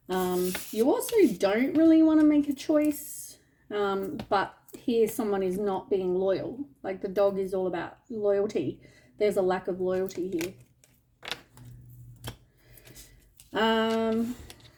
You also don't really want to make a choice, but here someone is not being loyal. Like the dog is all about loyalty. There's a lack of loyalty here. I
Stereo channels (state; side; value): identical; both; correlation 1.00